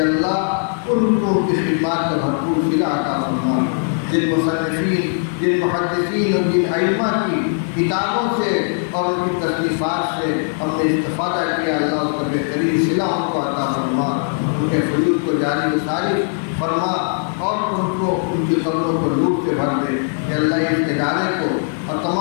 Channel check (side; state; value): right; silent; digital silence